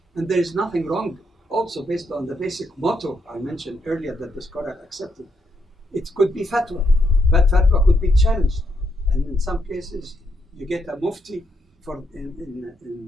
And there is nothing wrong, also based on the basic motto I mentioned earlier that the scholar accepted. It could be fatwa, but fatwa could be challenged. And in some cases, you get a mufti for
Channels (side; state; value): both; normal; correlation 0.78